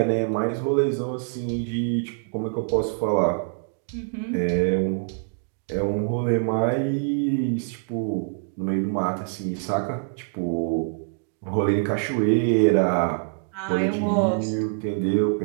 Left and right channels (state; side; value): silent; left; 62 dB below the other